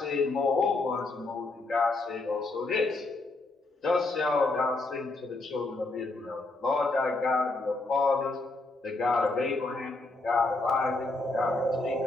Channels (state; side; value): quieter; right; 3.2 dB